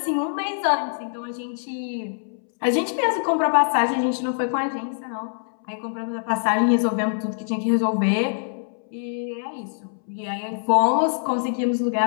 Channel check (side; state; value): right; silent; 63 dB below the other